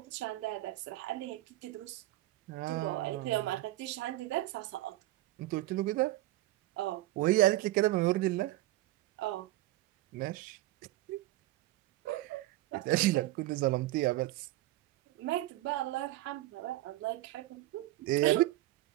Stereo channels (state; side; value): quieter; left; 16.6 dB